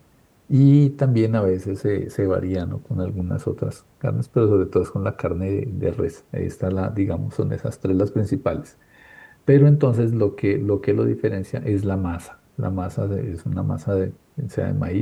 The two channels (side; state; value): both; identical; correlation 1.00